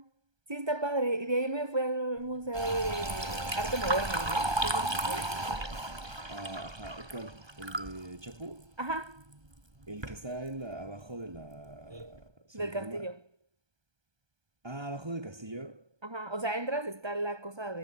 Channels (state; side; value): late; left; 1.3 ms